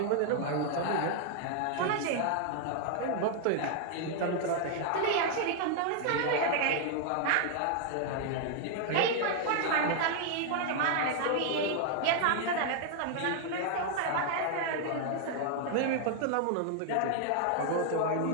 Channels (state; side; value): different; both; correlation 0.00